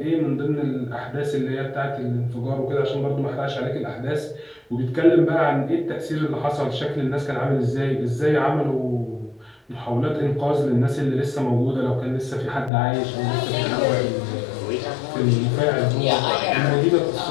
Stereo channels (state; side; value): drops out; right; at 12.7 s